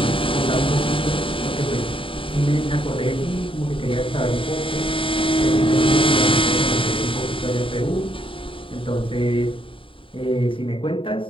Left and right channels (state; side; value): late; right; 0.25 ms